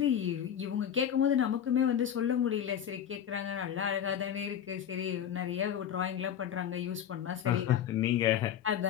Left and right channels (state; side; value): quieter; right; 9.4 dB